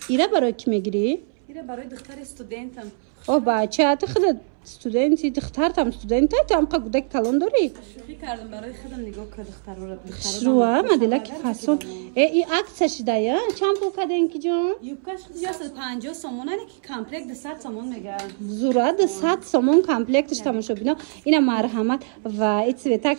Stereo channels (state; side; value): silent; left; 63 dB below the other